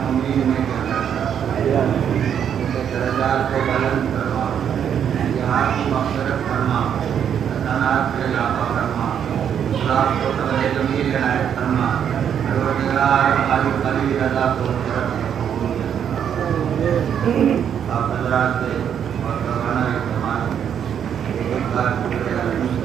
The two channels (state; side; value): quieter; left; 8.6 dB